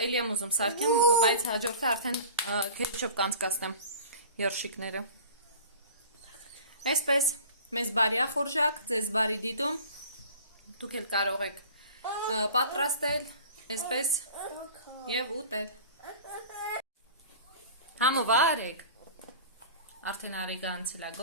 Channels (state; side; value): inverted; both; correlation -0.41